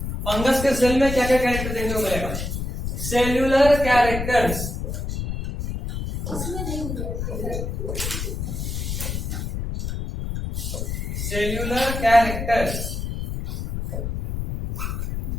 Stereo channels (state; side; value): noise; left; rumble, 4 dB below the sound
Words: Fungus के सेल में क्या क्या कैरेक्टर देखने को मिलेगा? Cellular characters. Cellular characters